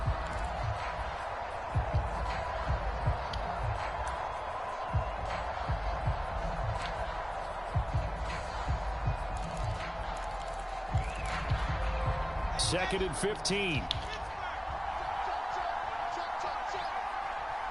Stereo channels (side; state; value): both; identical; correlation 1.00